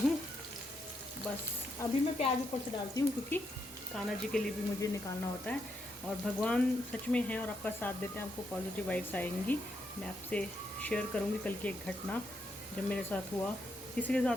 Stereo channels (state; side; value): normal; both; correlation 0.80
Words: बस अभी मैं प्याज ऊपर से डालती हूँ क्योंकि कान्हा जी के लिए भी मुझे निकालना होता है। और भगवान सच में हैं और आपका साथ देते हैं, आपको पॉजिटिव वाइब्स आएंगी। मैं आपसे शेयर करूँगी कल की एक घटना जब मेरे साथ हुआ। किसी के